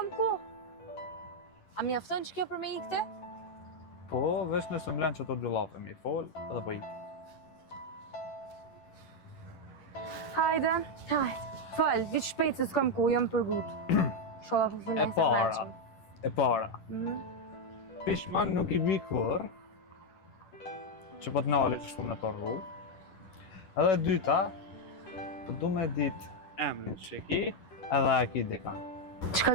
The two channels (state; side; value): late; right; 11 ms